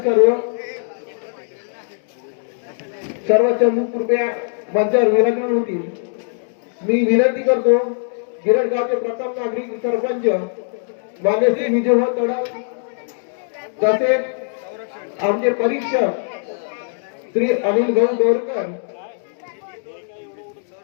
सर्व चमू कृपया मंचावर विराजमान होतील. मी विनंती करतो गिरडगावचे प्रथम नागरिक सरपंच मान्य श्री विजयभाऊ तडव तसेच आमचे परीक्षक श्री अनिल भाऊ बोरकर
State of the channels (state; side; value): silent; right; 65 dB below the other